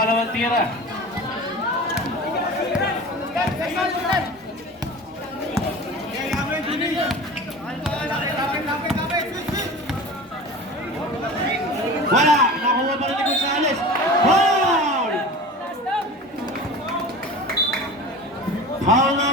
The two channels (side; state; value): both; normal; correlation 0.35